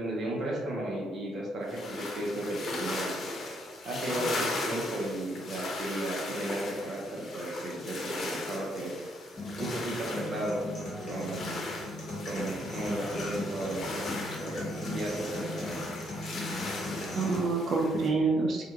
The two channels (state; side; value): normal; both; correlation 0.72